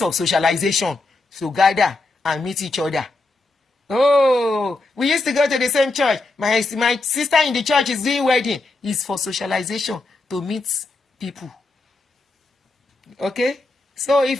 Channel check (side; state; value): right; quieter; 3.1 dB